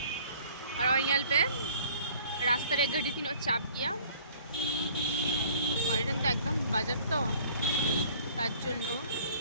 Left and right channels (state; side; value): inverted; both; correlation -0.53